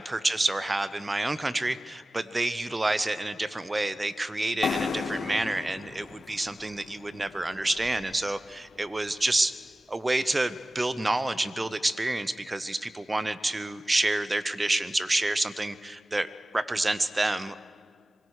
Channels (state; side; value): normal; both; correlation 0.97